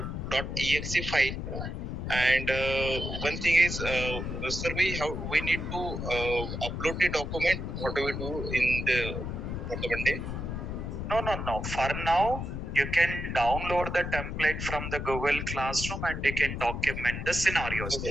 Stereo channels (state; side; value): noise; left; rumble, 5 dB below the sound